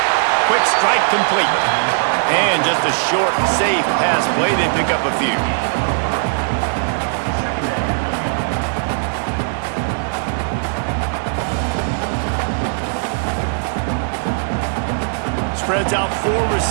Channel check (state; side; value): silent; left; digital silence